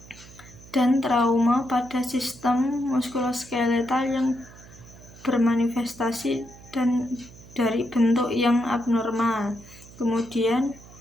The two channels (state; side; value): noise; right; hum, 20 dB below the sound